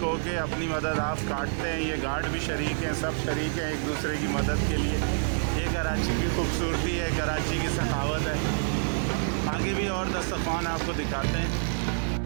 हो के अपनी मदद आप काटते हैं। ये गार्ड भी शरीक हैं, सब शरीक हैं एक दूसरे की मदद के लिए। ये कराची की खूबसूरती है, कराची की सखावत है। आगे भी और दस्तरखान आपको दिखाते हैं।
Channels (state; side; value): silent; left; digital silence